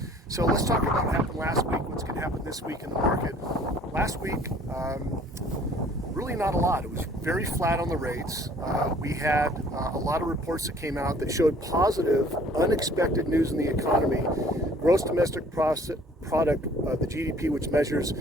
So let's talk about what happened last week, what's going to happen this week in the market. Last week, really not a lot. It was very flat on the rates. We had a lot of reports that came out that showed positive, unexpected news in the economy. Gross domestic product, the GDP, which measures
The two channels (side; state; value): both; normal; correlation 0.55